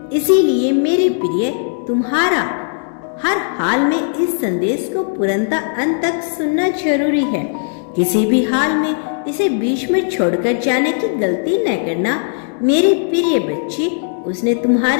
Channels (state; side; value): silent; right; digital silence